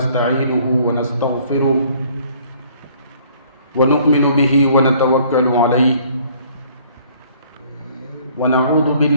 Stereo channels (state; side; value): inverted; both; correlation -0.58